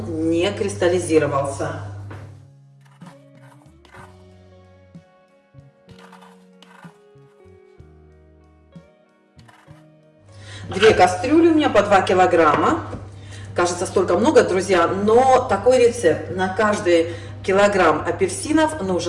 не кристаллизировался. Две кастрюли у меня по 2 килограмма. Кажется, столько много, друзья, но такой рецепт. На каждый килограмм апельсинов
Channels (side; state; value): both; identical; correlation 1.00